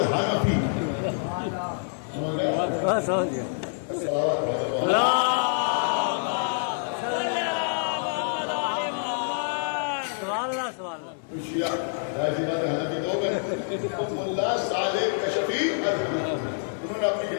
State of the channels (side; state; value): right; silent; digital silence